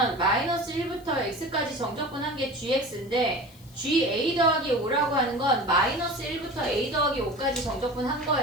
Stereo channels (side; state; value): left; noise; hiss, 25 dB below the sound